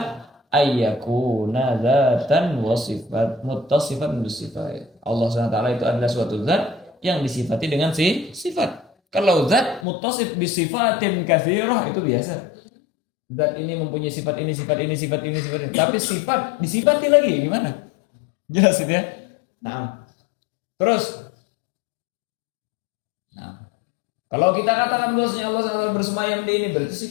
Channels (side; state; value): right; drops out; at 9.9 s